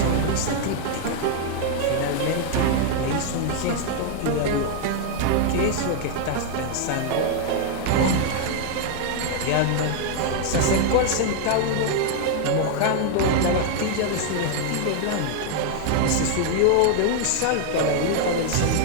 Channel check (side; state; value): both; different; correlation 0.00